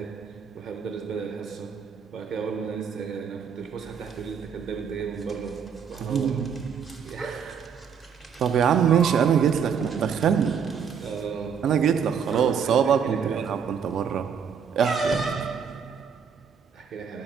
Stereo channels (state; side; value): quieter; left; 7.1 dB